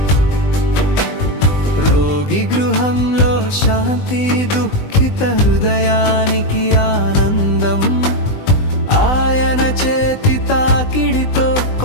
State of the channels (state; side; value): late; right; 20 ms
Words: రోగి గృహంలో శాంతి, దుఃఖిత హృదయానికి ఆనందం. ఆయన చేతి తాకిడితో